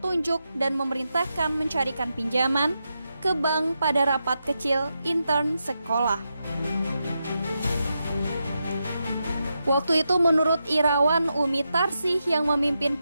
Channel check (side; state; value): both; inverted; correlation -0.87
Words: dan memerintahkan mencarikan pinjaman ke bank pada rapat kecil intern sekolah. Waktu itu menurut Irawan, Umi Tarsih yang memimpin